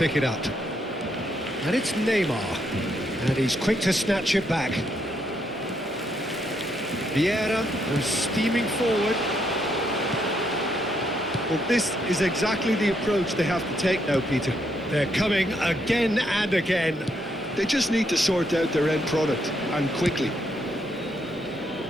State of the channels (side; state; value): both; normal; correlation 0.76